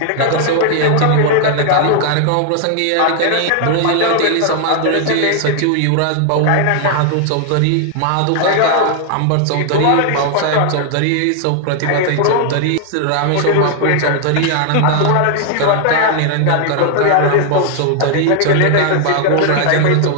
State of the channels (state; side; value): different; both; correlation 0.00